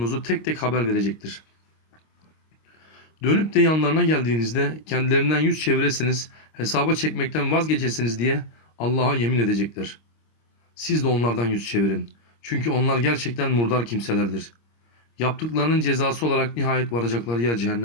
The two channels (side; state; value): right; late; 26 ms